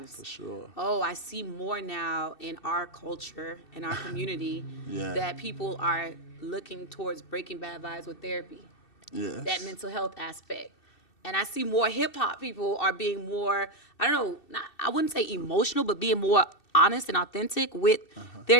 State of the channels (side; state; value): right; late; 2.7 ms